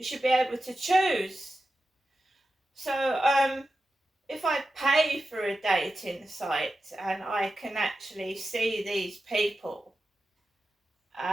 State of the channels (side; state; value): both; normal; correlation 0.91